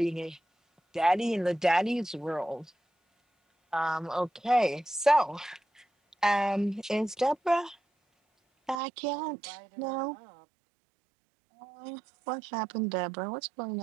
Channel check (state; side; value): drops out; left; at 8.8 s